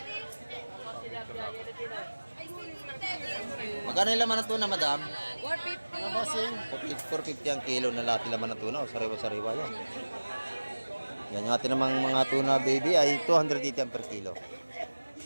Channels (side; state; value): both; inverted; correlation -1.00